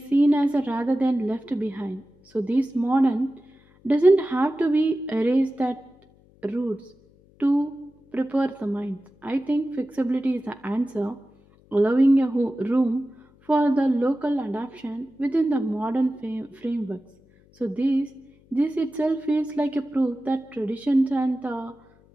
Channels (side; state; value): left; noise; hum, 30 dB below the sound